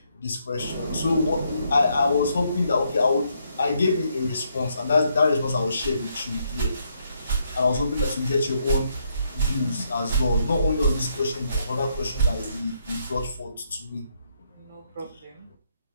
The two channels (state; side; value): inverted; both; correlation -0.75